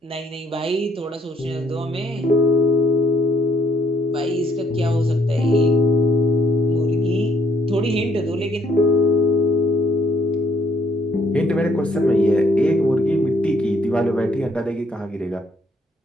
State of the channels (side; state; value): both; normal; correlation 0.68